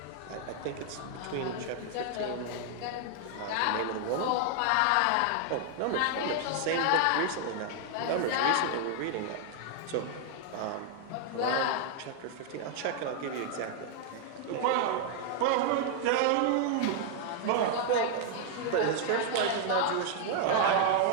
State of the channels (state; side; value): different; both; correlation 0.00